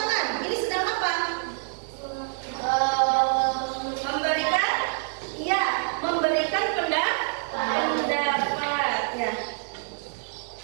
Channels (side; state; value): left; silent; digital silence